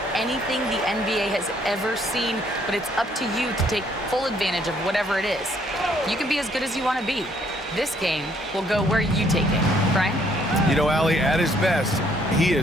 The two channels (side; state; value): both; normal; correlation 0.66